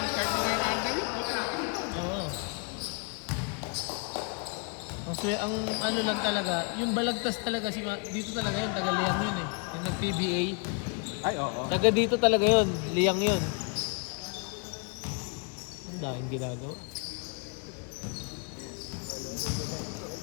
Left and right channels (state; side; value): quieter; right; 34.3 dB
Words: 39 under yun, puta. Oo. Ang ano lang talaga, yung balagtas talaga, dito talaga yun, taga Liang yun eh. Yung nag-PBA. Ay, oo. Taga dito talaga yun, Liang yun. Ang daming ginagawa.